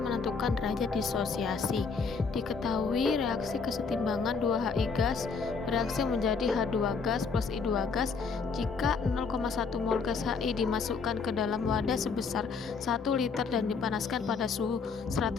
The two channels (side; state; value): right; quieter; 5.1 dB